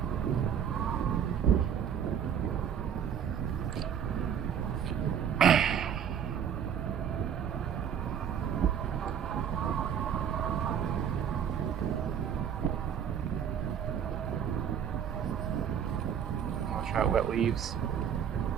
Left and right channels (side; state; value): left; quieter; 8.5 dB